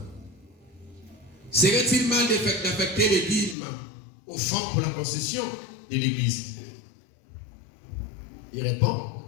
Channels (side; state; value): right; drops out; at 3.6 s